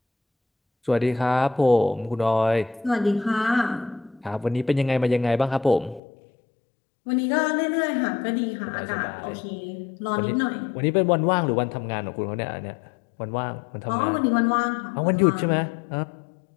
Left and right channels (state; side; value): drops out; right; at 6.0 s